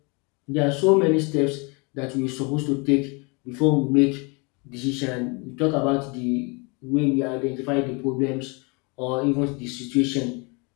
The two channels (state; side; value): quieter; right; 30.6 dB